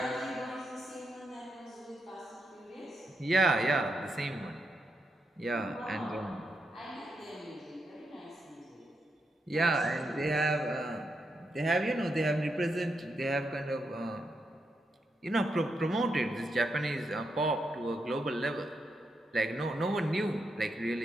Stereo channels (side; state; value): both; normal; correlation 0.83